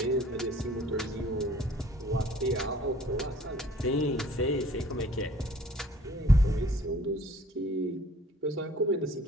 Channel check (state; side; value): normal; both; correlation 0.54